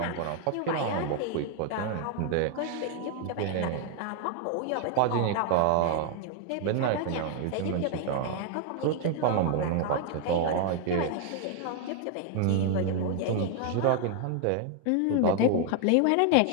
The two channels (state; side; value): different; both; correlation 0.00